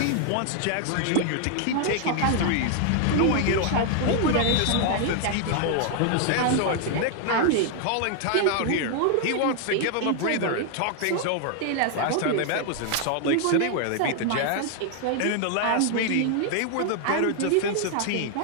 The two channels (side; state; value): both; different; correlation 0.00